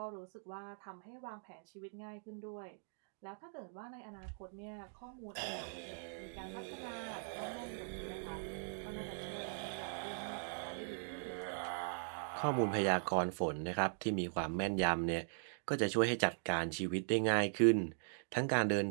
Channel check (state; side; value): silent; left; digital silence